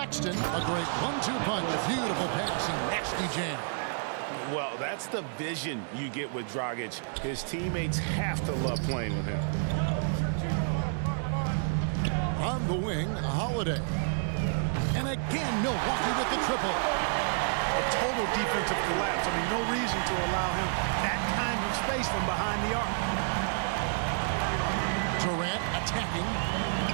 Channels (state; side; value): silent; left; digital silence